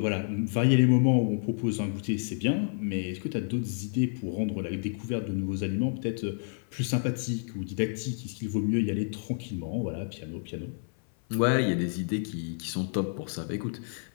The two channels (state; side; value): silent; right; 58 dB below the other